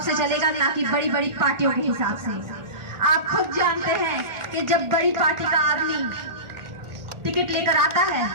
से चलेगा, ना कि बड़ी बड़ी पार्टियों के हिसाब से। आप खुद जानते हैं कि जब बड़ी पार्टी का आदमी टिकट लेकर आता है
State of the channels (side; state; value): left; late; 1.4 ms